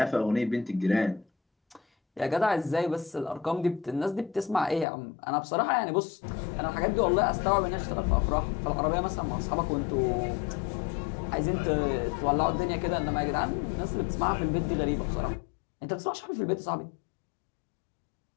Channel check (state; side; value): drops out; right; at 4.9 s